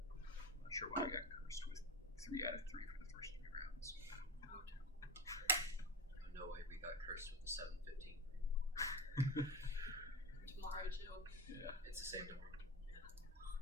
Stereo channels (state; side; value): normal; both; correlation 0.26